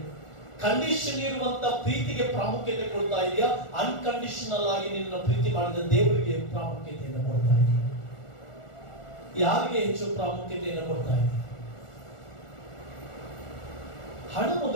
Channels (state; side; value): late; right; 1.4 ms